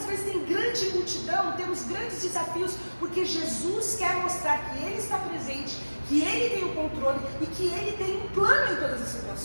vezes tem grande multidão, temos grandes desafios, porque Jesus quer mostrar que Ele está presente, que Ele tem o controle e que Ele tem um plano em todas as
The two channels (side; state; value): both; inverted; correlation -1.00